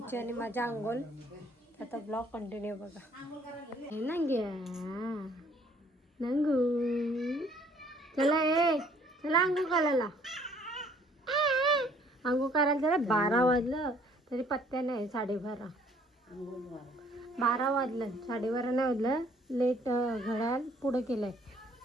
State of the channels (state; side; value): normal; both; correlation 0.60